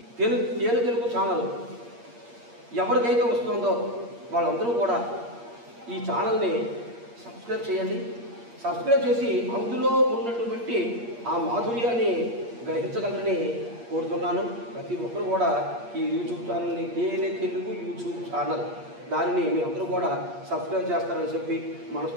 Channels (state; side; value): late; left; 8.5 ms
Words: తేనె తెలుగు ఛానల్ ఎవరికైతే వస్తుందో వాళ్ళందరూ కూడా ఈ ఛానల్ని సబ్స్క్రైబ్ చేయండి. సబ్స్క్రైబ్ చేసి అందులో ఉన్నటువంటి ఆ మాధుర్యాన్ని గ్రహించగలరని కోరుతున్నాను. ప్రతి ఒక్కరు కూడా ఈ యూట్యూబ్ ఛానల్ని తేనె తెలుగు యూట్యూబ్ ఛానల్ దానిని మీ అందరూ కూడా సబ్స్క్రైబ్ చేస్తారని చెప్పి